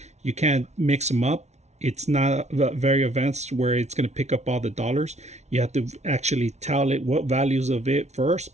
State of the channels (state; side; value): late; left; 0.32 ms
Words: You can't mix them up. It's not very advanced where it's going to pick up all the dollars. You have to actually tell it what values of it first